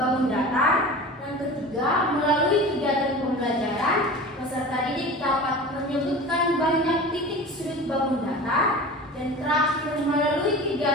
datar. Yang ketiga, melalui kegiatan pembelajaran peserta didik dapat menyebutkan banyak titik sudut bangun datar. Dan terakhir, melalui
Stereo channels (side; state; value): both; normal; correlation 0.35